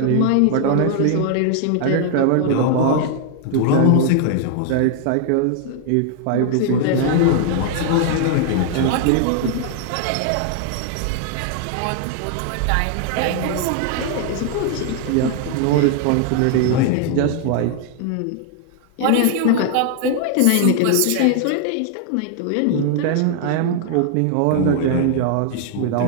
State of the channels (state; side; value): different; both; correlation 0.00